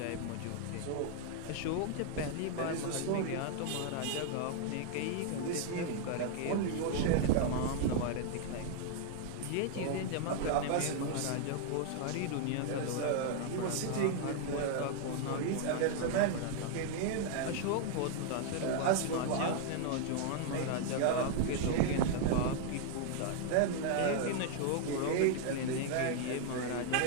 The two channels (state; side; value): different; both; correlation 0.00